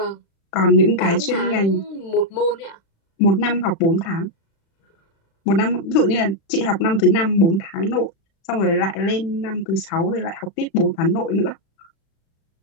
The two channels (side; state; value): right; late; 36 ms